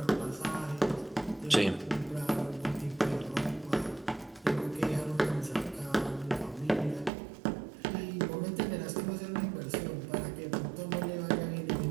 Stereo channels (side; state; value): left; drops out; at 7.1 s